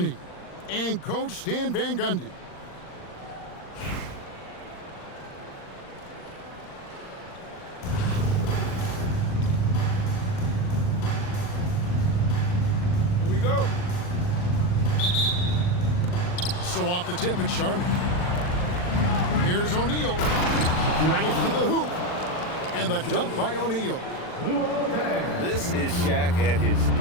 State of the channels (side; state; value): right; late; 39 ms